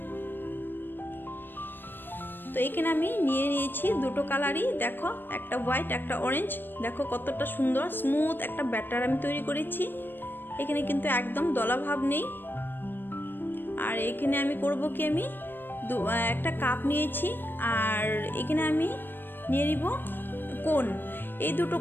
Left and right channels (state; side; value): late; right; 0.095 ms